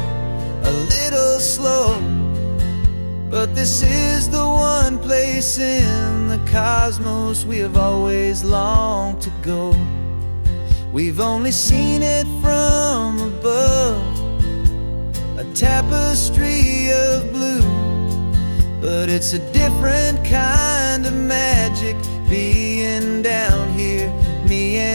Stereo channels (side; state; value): both; inverted; correlation -1.00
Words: a little slow, but this is the one place in the cosmos we have always longed to go. We've only seen it from above, a tapestry of blue, but it's a different kind of magic being down here, me